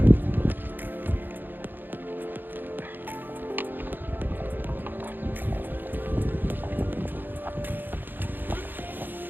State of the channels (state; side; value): late; left; 0.092 ms